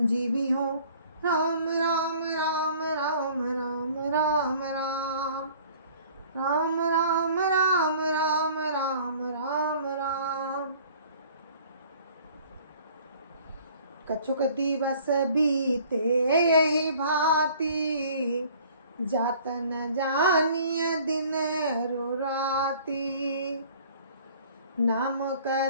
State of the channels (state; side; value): inverted; both; correlation -0.52